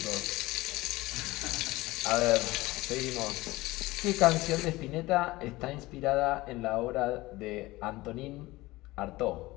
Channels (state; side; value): quieter; right; 19.6 dB